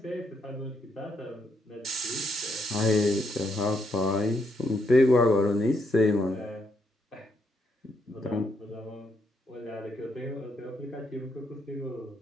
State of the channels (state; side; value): normal; both; correlation 0.77